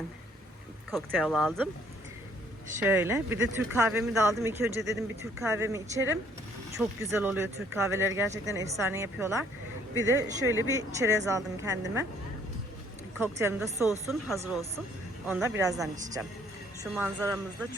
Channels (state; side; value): normal; both; correlation 0.62